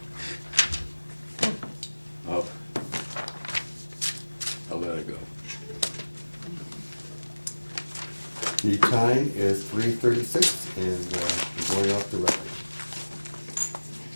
I'll let it go. The time is 3:36, and we're going off the record.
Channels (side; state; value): both; inverted; correlation -1.00